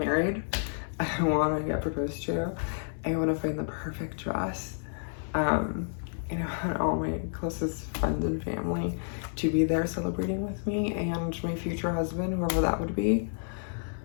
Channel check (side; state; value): right; silent; 58 dB below the other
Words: I want to get proposed to. I want to find the perfect dress. And all my closest friends and family to be there celebrating with me, and my future husband, whoever that would be.